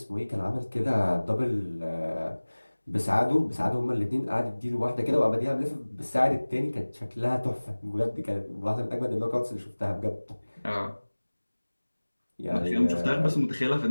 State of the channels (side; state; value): both; inverted; correlation -1.00